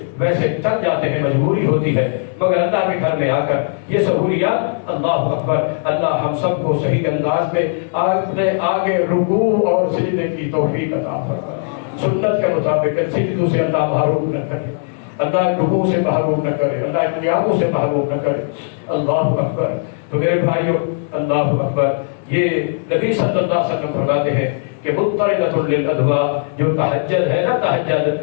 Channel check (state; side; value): silent; right; 67 dB below the other